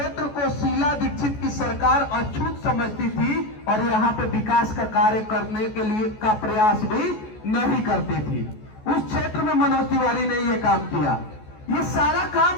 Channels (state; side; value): late; right; 14 ms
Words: को शीला दीक्षित की सरकार अछूत समझती थी और यहां पे विकास का कार्य करने के लिए का प्रयास भी नहीं करती थी। उस क्षेत्र में मनोज तिवारी ने ये काम किया। ये सारा